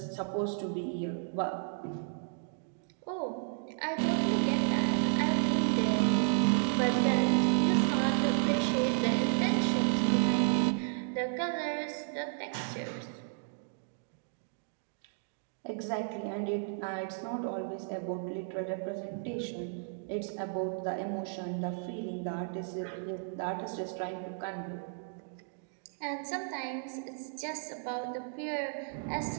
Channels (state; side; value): silent; left; digital silence